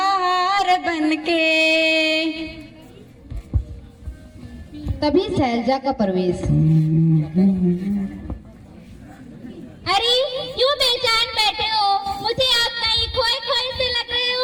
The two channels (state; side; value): identical; both; correlation 1.00